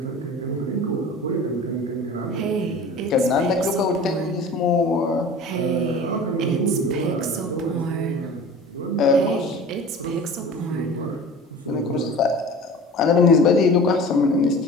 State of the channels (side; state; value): both; normal; correlation 0.39